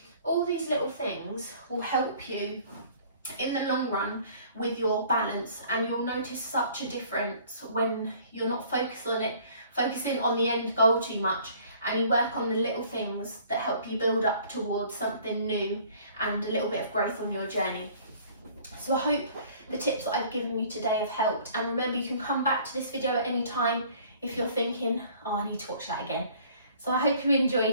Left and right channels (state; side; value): inverted; both; correlation -0.54